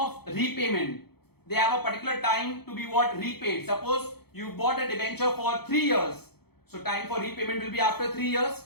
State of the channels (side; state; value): right; late; 0.96 ms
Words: repayment. They have a particular time to be what? Repaid. Suppose you bought a debenture for 3 years. So time for repayment will be after 3